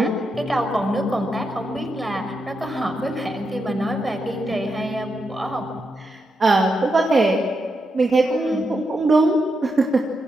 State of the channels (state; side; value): normal; both; correlation 0.84